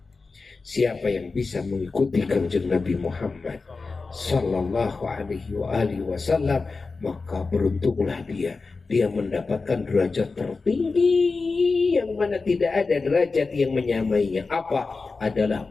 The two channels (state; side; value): quieter; right; 4.1 dB